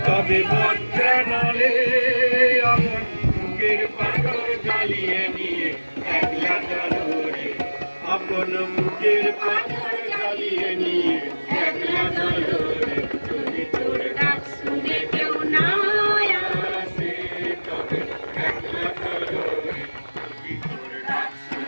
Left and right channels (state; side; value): inverted; both; correlation -1.00